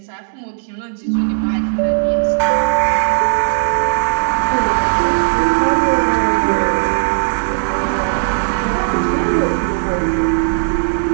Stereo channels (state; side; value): silent; left; 61 dB below the other